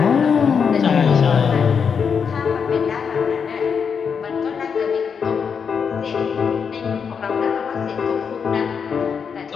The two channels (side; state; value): right; quieter; 6.4 dB